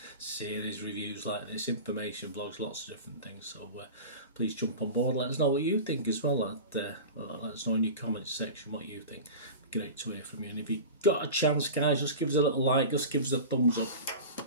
series reviews like this, information, blogs, lots of different things. So please jump on board. Let us know what you think as well. Let us know in your comments section what you think. Great to hear from you. And if you got a chance, guys, just give us a little like, just give us a thumbs up.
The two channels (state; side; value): inverted; both; correlation -0.32